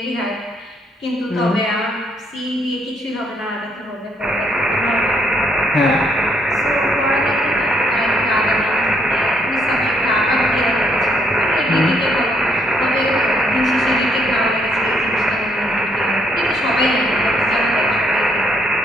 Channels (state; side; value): normal; both; correlation 0.70